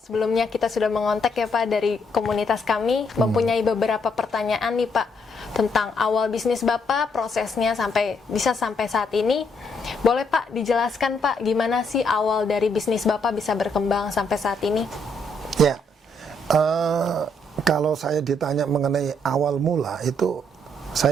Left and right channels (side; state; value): both; normal; correlation 0.73